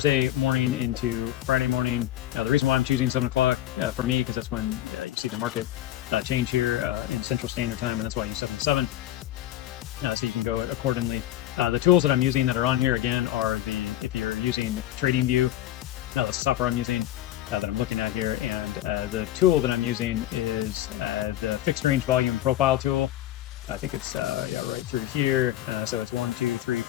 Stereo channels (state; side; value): quieter; right; 13.5 dB